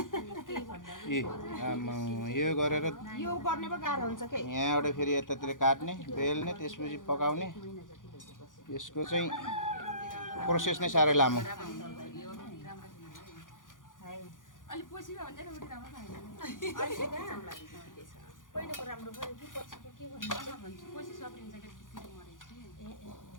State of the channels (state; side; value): late; right; 0.88 ms